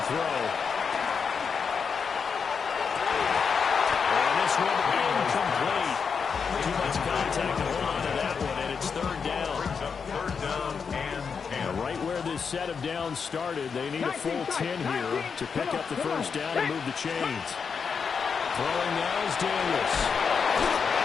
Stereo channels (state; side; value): quieter; right; 6.0 dB